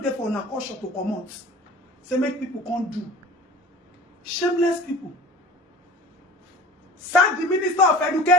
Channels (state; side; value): normal; both; correlation 0.42